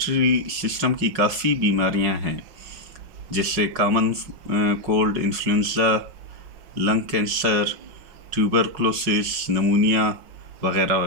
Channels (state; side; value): late; left; 5.4 ms